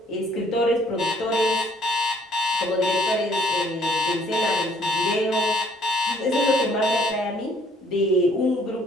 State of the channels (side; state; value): both; normal; correlation 0.61